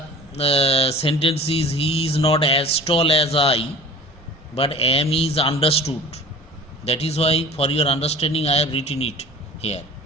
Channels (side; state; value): both; normal; correlation 0.43